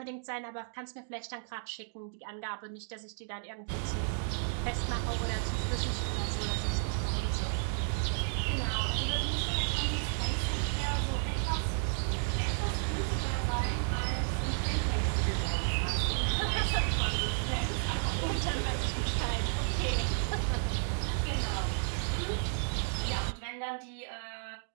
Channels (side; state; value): left; silent; digital silence